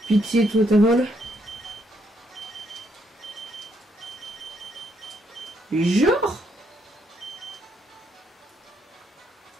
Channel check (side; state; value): both; normal; correlation 0.75